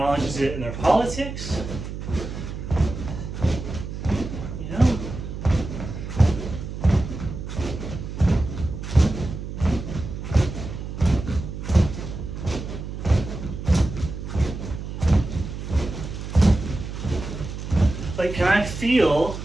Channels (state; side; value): noise; right; hum, 8 dB below the sound